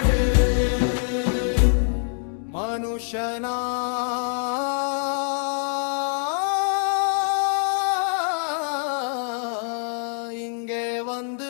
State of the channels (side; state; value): right; silent; digital silence